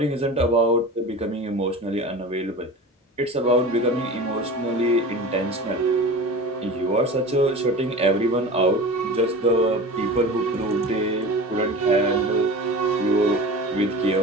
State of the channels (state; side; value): normal; both; correlation 0.34